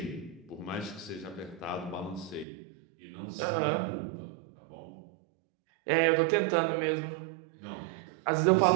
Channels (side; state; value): left; drops out; at 2.5 s